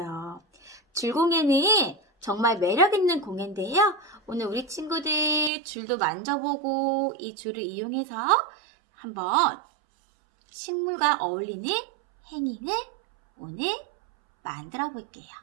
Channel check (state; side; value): drops out; left; at 5.5 s